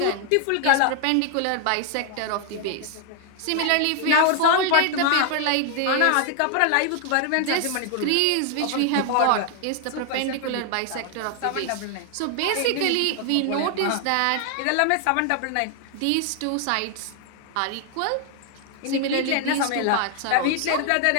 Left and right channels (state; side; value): different; both; correlation 0.00